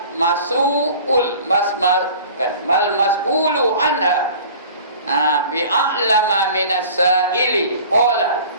mas'ulu anha bi'a'lama minas sa'ili. Qala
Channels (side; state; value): both; inverted; correlation -0.44